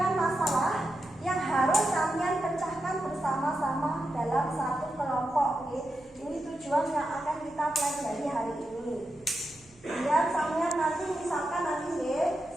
masalah yang harus kalian pecahkan bersama-sama dalam satu kelompok. Ini tujuan yang akan kita pelajari hari ini. Biar sampean nanti misalkan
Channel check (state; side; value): noise; right; hum, 28 dB below the sound